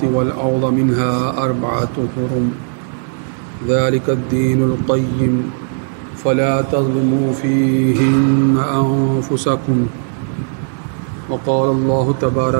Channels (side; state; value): left; silent; digital silence